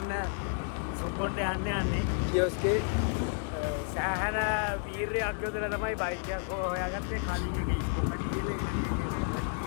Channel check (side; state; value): right; silent; 57 dB below the other